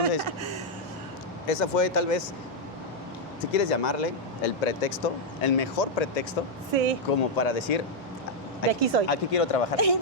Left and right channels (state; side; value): normal; both; correlation -0.02